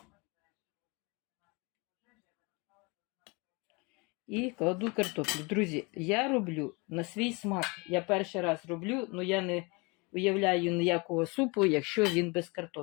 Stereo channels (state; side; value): quieter; right; 28.3 dB